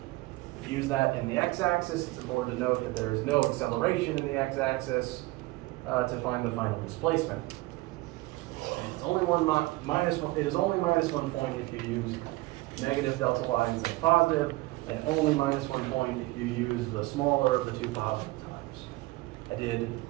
use that in the x-axis. It's important to note that there is no acceleration in the x-axis to find the final displacement. And it's only it is only -1 point if you use negative delta y instead of positive, and only -1 point if you use the smaller of the 2 positive times. I did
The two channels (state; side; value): quieter; left; 20.5 dB